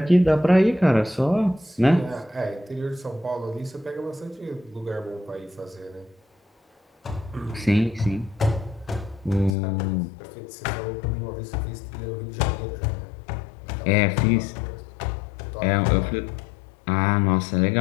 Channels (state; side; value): drops out; right; at 9.6 s